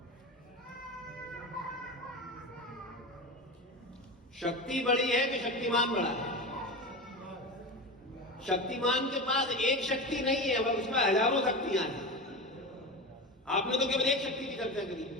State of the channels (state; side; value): normal; both; correlation 0.24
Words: शक्ति बड़ी है कि शक्तिमान बड़ा है? शक्तिमान के पास एक शक्ति नहीं है, वह उसमें हजारों शक्तियां हैं। आपने तो केवल एक शक्ति की चर्चा करी।